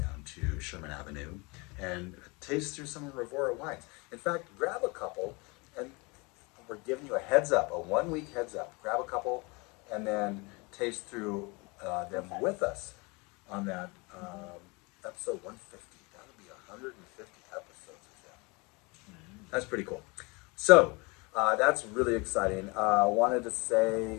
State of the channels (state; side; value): quieter; right; 27.5 dB